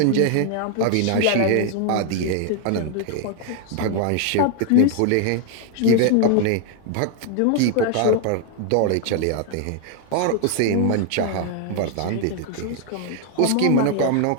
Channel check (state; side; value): different; both; correlation 0.00